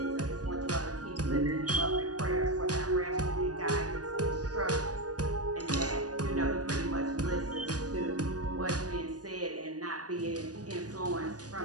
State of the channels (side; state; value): left; late; 0.68 ms